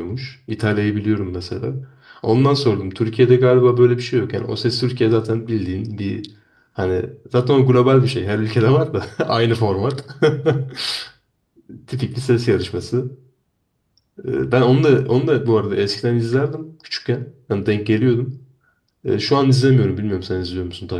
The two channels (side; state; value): both; identical; correlation 1.00